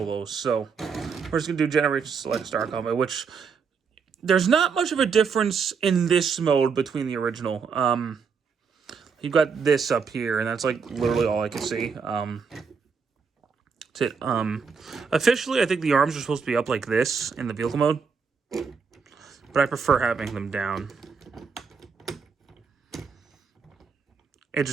those. So we're just going to do Generation Select Star Convoy, which there's not much of a difference in this mode between the original. You've got this up here, and that's like literally all I can see. That's it. Officially, I think the arms are supposed to be up like this in the vehicle mode, but I prefer having them down. It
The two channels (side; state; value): left; quieter; 5.7 dB